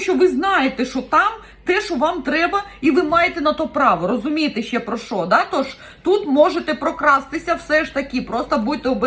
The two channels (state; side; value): identical; both; correlation 1.00